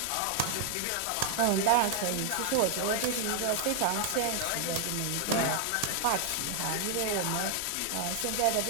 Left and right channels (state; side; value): different; both; correlation 0.00